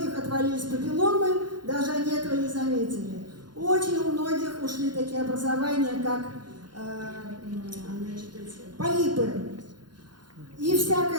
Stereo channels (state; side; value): late; left; 0.71 ms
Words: отвалились папилломы, даже они этого не заметили. Очень у многих ушли такие образования, как полипы и